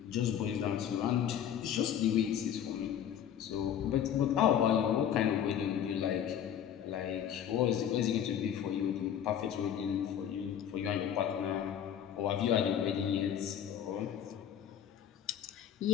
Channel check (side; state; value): right; quieter; 9.5 dB